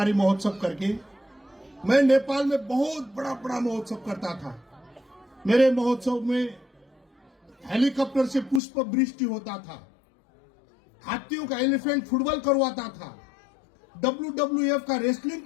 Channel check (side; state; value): right; drops out; at 8.6 s